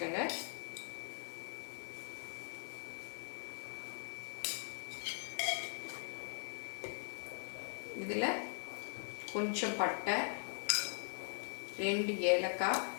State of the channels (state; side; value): silent; right; digital silence